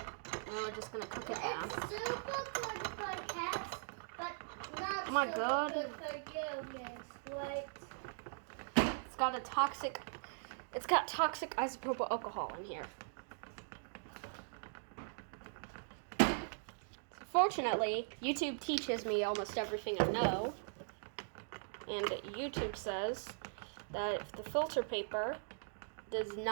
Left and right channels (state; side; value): silent; left; digital silence